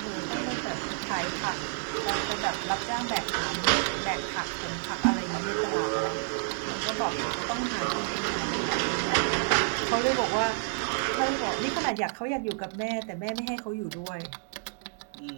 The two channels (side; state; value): left; silent; digital silence